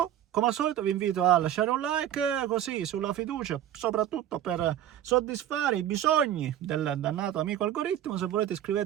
Come al solito vi invito a lasciare un like, così, sulla fiducia, soprattutto per soddisfare i bisogni del dannato amico algoritmo. Se volete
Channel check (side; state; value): left; quieter; 11.4 dB